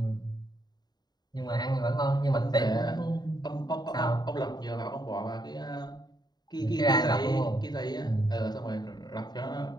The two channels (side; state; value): right; late; 0.20 ms